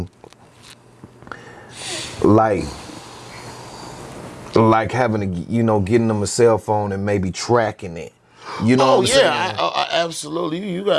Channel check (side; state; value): both; identical; correlation 1.00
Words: like having to, you know, getting them a cell phone and maybe tracking it. You know what I'm saying? I absolutely. You